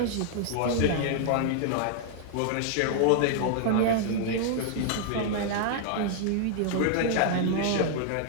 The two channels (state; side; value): different; both; correlation 0.00